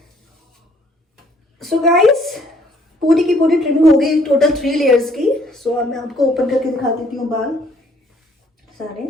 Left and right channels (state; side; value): normal; both; correlation 0.63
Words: सो गाइस पूरी की पूरी ट्रिमिंग हो गई टोटल 3 लेयर्स की। सो अब मैं आपको ओपन करके दिखा देती हूँ बाल सारे।